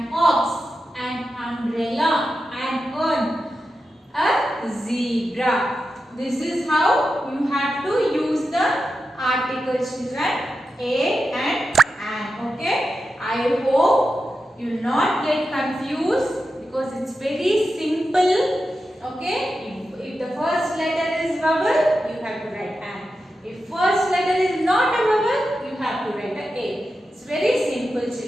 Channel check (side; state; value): both; normal; correlation 0.90